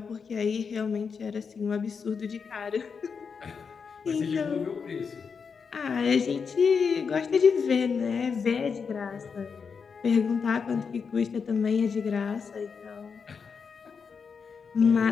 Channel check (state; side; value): quieter; right; 5.8 dB